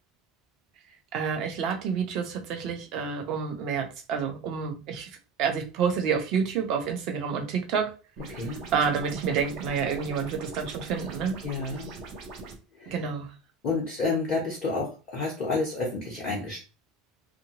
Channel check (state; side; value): quieter; left; 3.4 dB